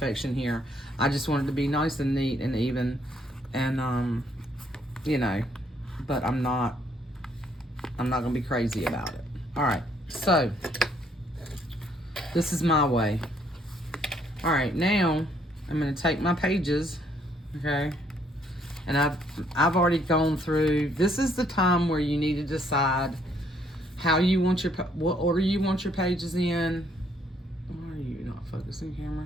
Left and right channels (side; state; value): both; normal; correlation 0.68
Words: here. I just want it to be nice and neat and even, and you know, but I'm not gonna be crazy about it. All right, so this is my way. All right, now I'm gonna take my pages, okay, and I've already gone through. This is the time where you need to decide how you want what order you want your pages in. Why are you not focusing,